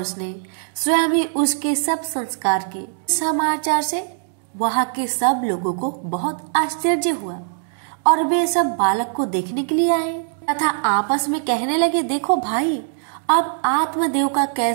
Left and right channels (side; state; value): left; silent; digital silence